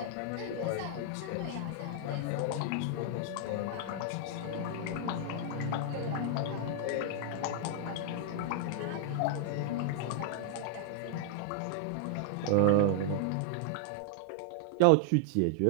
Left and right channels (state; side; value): different; both; correlation 0.00